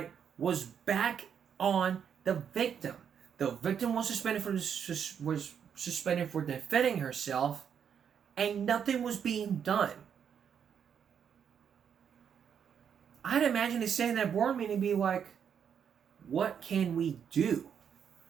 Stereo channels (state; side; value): quieter; left; 7.8 dB